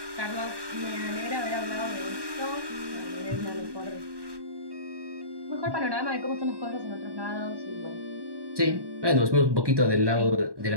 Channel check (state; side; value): late; left; 1.1 ms